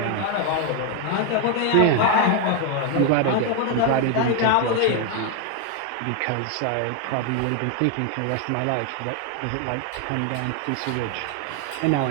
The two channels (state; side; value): different; both; correlation 0.01